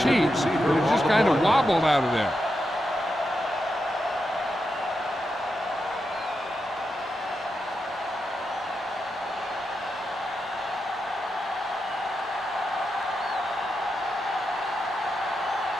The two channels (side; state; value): both; normal; correlation 0.87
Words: heat that it just kind of wobbled out of there.